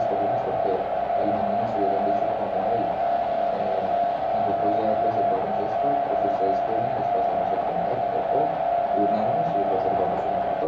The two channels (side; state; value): both; identical; correlation 1.00